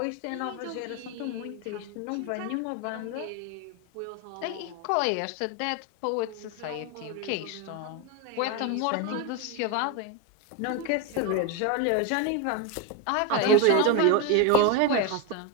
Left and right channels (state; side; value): different; both; correlation 0.02